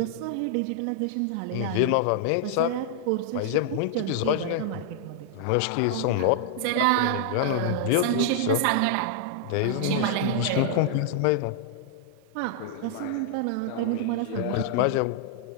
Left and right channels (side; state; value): both; different; correlation -0.01